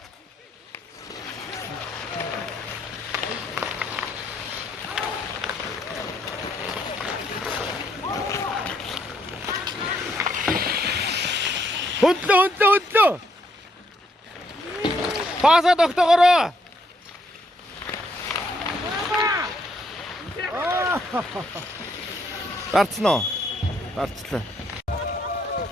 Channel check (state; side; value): normal; both; correlation 0.72